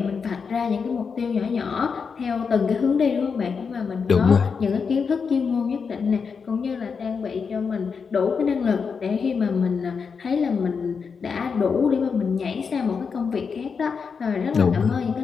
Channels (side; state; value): right; quieter; 5.7 dB